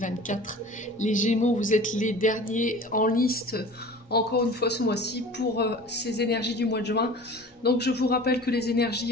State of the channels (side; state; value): both; normal; correlation 0.41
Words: Les Gémeaux, vous êtes les derniers en liste, encore une fois ce mois-ci, pour ces énergies du mois de juin. Donc je vous rappelle que les